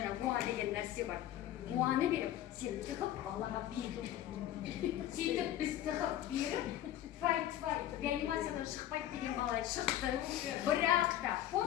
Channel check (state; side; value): quieter; right; 12.4 dB